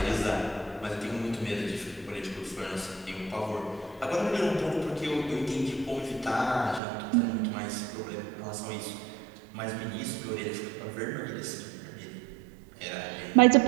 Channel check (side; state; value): left; drops out; at 6.8 s